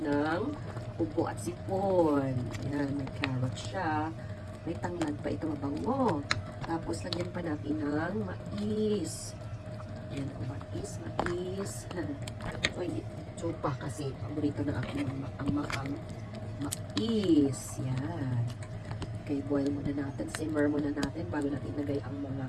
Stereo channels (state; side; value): identical; both; correlation 1.00